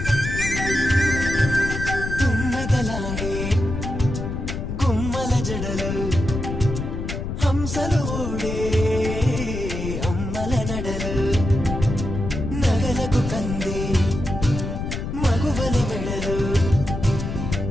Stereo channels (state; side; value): noise; left; rumble, 5 dB below the sound